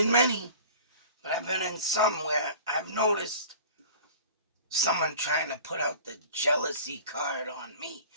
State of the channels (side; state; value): both; inverted; correlation -0.42